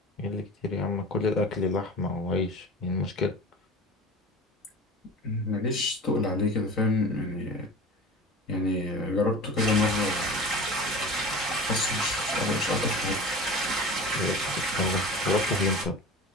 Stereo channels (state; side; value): normal; both; correlation 0.35